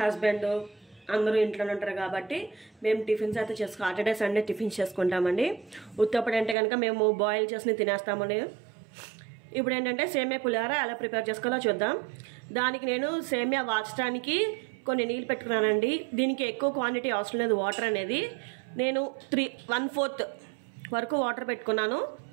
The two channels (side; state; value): left; drops out; at 6.6 s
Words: అందరూ ఇంట్లో ఉంటారు కాబట్టి మేము టిఫిన్స్ అయితే సాటర్డే సండే టిఫిన్స్ చేసుకుంటామండి. ఉత్తప్పుడు అంటే కనుక మేము బాయిల్ చేసి తినేస్తామని. ఇప్పుడు ఏంటంటే సేమియా పులిహోర ఎలా ప్రిపేర్ చేసుకోవాలో చూద్దాం. దానికి నేను సేమియా వాచడానికి కొన్ని నీళ్ళు పెట్టుకున్నానండి. దీనికి ఎక్కువ క్వాంటిటీ అవసరం లేదు. వాటర్ అనేది నేను 1/4 వరకు వాటర్ పెట్టుకున్నాను.